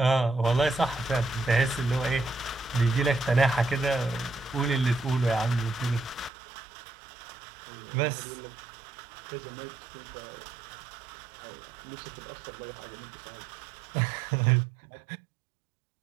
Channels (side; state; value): left; drops out; at 6.3 s